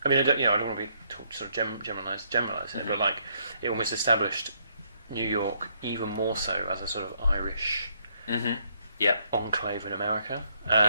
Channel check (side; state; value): both; inverted; correlation -0.71